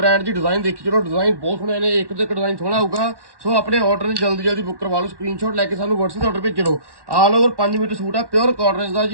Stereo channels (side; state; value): left; late; 1.1 ms